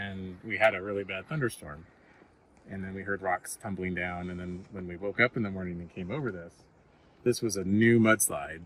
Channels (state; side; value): identical; both; correlation 1.00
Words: we had a really bad thunderstorm. And then we heard rocks tumbling down, and then when we woke up in the morning and came over this was a new mudslide.